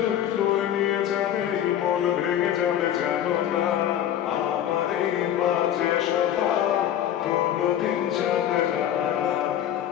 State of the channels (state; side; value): quieter; right; 10.8 dB